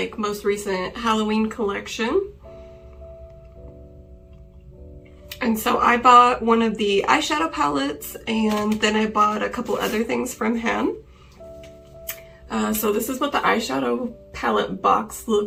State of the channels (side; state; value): both; identical; correlation 1.00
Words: most recent Halloween collection. And so I bought one of the eyeshadow palettes, and then I bought a couple other things from him. So this is what the eyeshadow palette box